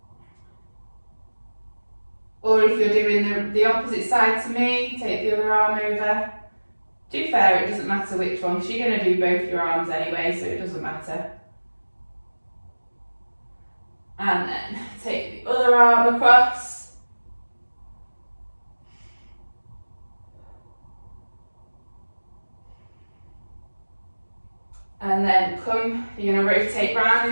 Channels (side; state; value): both; inverted; correlation -1.00